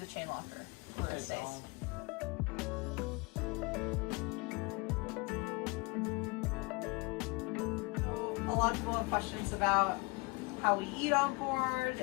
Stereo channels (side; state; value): right; quieter; 27.3 dB